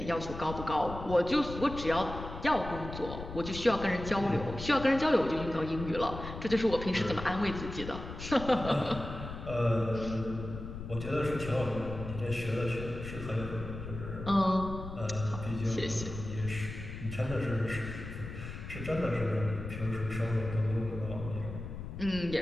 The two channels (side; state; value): left; noise; rumble, 9 dB below the sound